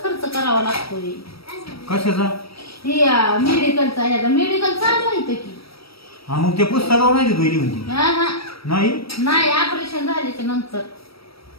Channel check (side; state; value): right; late; 0.76 ms